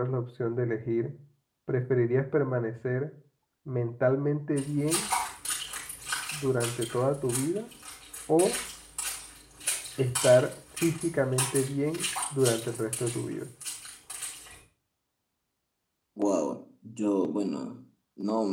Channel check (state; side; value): identical; both; correlation 1.00